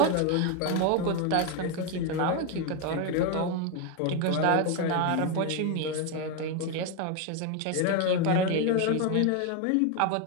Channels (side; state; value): both; different; correlation 0.02